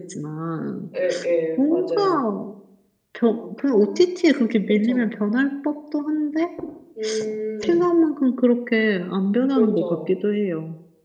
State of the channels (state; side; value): identical; both; correlation 1.00